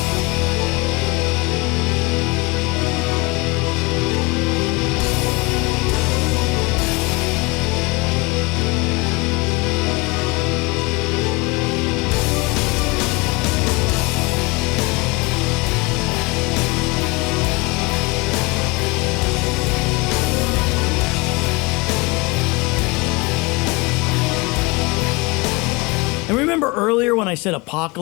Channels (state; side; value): quieter; right; 25.8 dB